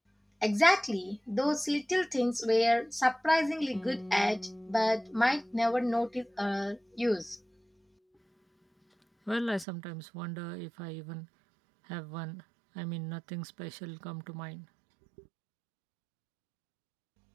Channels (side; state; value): left; drops out; at 9.7 s